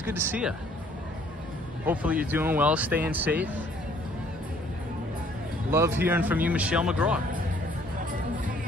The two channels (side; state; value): both; normal; correlation 0.60